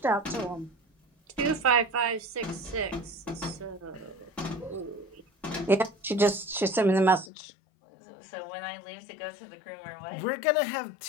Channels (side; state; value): right; drops out; at 7.3 s